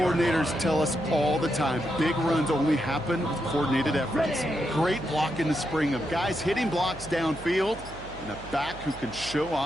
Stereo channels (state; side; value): noise; right; hum, 16 dB below the sound